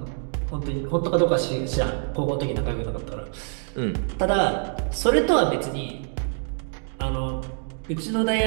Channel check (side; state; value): left; silent; 61 dB below the other